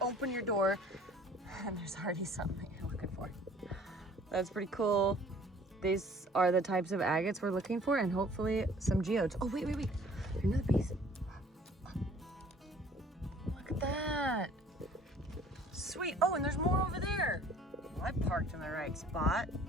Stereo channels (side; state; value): both; normal; correlation 0.53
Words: open your door and there's already something you're looking for. That's pretty cool. These are the types of agates we're looking for, and hopefully some geodes. Oh, wait. Another piece. Look at that. Sweet. Oh, and there's more over there. Well, I parked in the right spot.